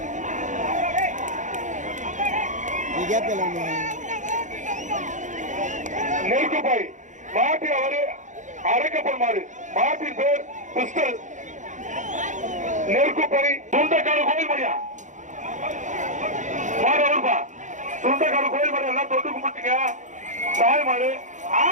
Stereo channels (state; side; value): late; left; 0.36 ms